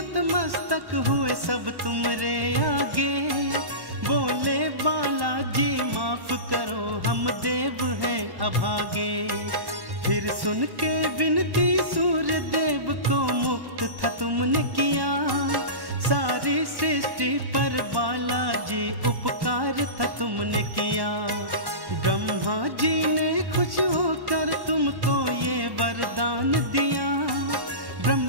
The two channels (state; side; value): late; left; 1.1 ms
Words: हुए सब तुमरे आगे, बोले बालाजी माफ करो हम देव हैं अभागे। फिर सुन के विनती सूर्य देव को मुक्त था तुमने किया, सारी सृष्टि पर बालाजी उपकार था तुमने किया। ब्रह्मा जी ने खुश होकर तुमको ये वरदान दिया,